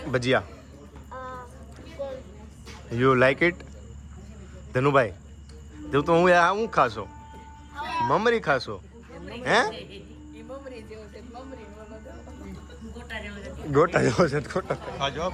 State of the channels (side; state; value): both; identical; correlation 1.00